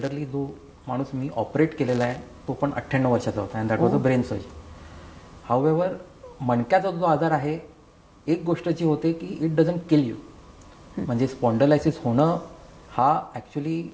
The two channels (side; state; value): both; identical; correlation 1.00